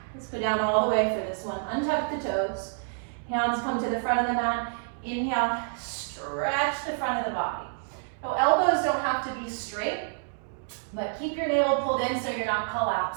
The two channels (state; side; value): silent; left; digital silence